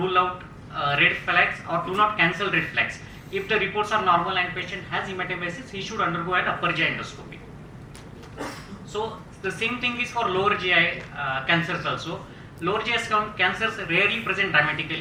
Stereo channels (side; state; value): both; identical; correlation 1.00